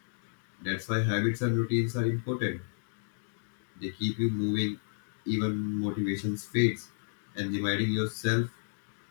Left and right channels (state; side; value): silent; right; digital silence